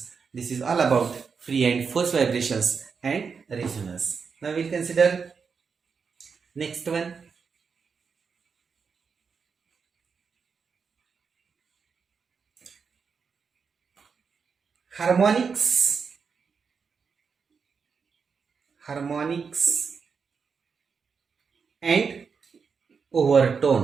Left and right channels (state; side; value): quieter; left; 5.7 dB